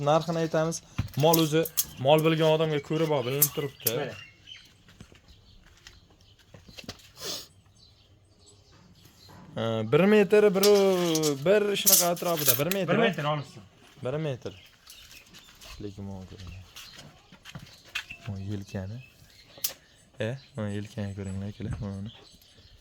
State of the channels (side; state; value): both; identical; correlation 1.00